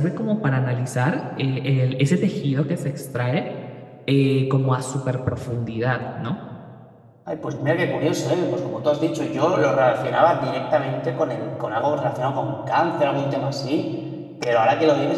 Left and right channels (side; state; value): both; identical; correlation 1.00